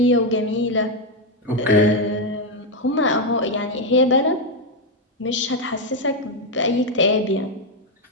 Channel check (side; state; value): both; normal; correlation 0.05